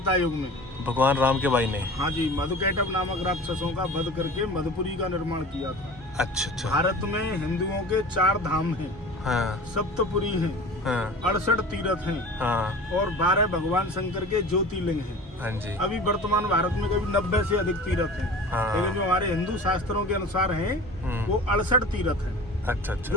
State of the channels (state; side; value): normal; both; correlation 0.38